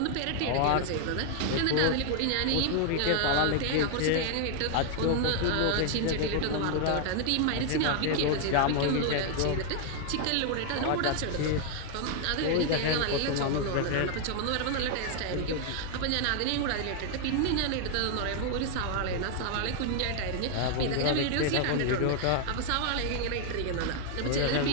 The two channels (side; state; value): both; different; correlation 0.00